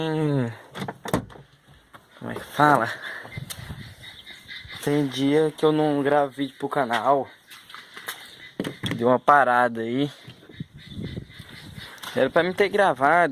Como é que fala? Tem dia que eu não gravo vídeo pro canal. Deu uma parada aí. Era pra mim ter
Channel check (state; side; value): identical; both; correlation 1.00